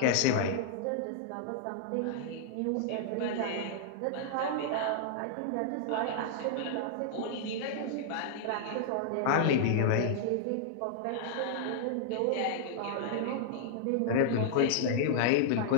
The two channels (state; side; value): different; both; correlation -0.01